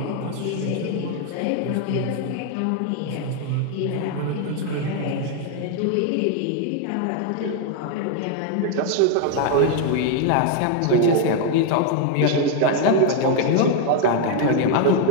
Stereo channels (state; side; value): different; both; correlation 0.01